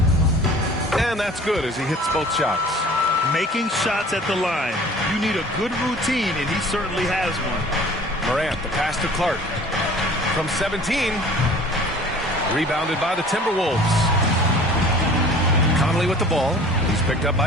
And that's good as he hits both shots. Making shots at the line. You need a good routine, and he certainly has one. Morant, the pass to Clark. From 17. Rebounded by the Timberwolves. Conley with the ball. He's picked up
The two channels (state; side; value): normal; both; correlation 0.47